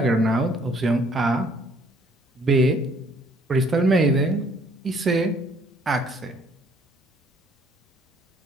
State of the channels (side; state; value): both; normal; correlation 0.62